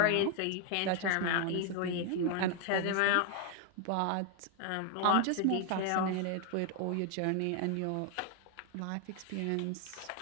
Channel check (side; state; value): both; different; correlation 0.00